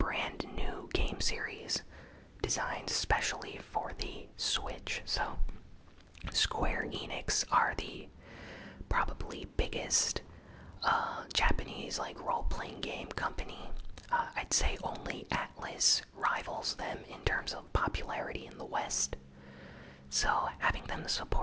new game series designed specially for the Switch. So Square Enix are the probably biggest Japanese role-playing game company. I'd say only Atlas rivals them in terms of popularity in the West. So having them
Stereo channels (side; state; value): both; identical; correlation 1.00